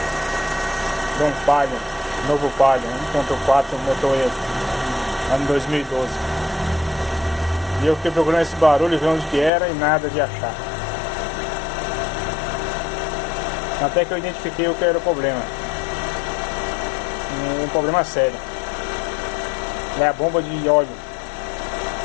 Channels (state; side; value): drops out; right; at 9.5 s